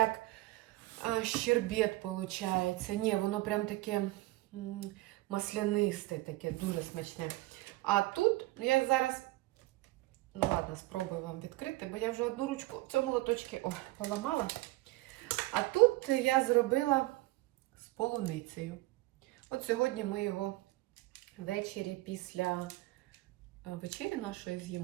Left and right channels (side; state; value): left; quieter; 19.5 dB